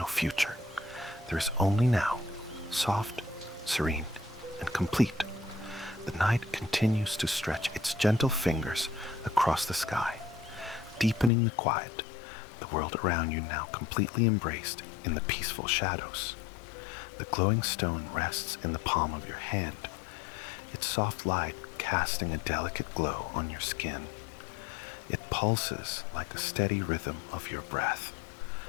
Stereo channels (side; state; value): right; drops out; at 11.3 s